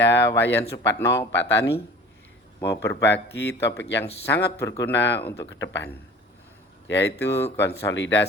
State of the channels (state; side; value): normal; both; correlation 0.43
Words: Wayan Supatno, Pak Tani, mau berbagi topik yang sangat berguna untuk ke depan, yaitu